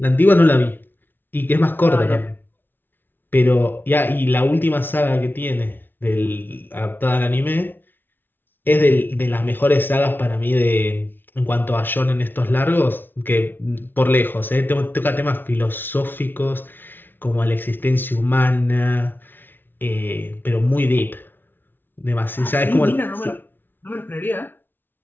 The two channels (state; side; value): late; right; 0.096 ms